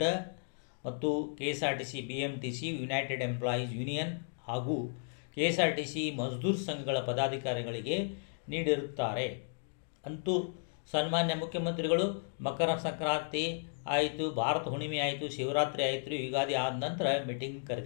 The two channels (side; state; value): right; silent; digital silence